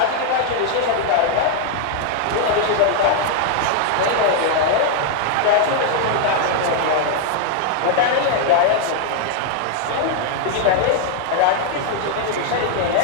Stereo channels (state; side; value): different; both; correlation 0.00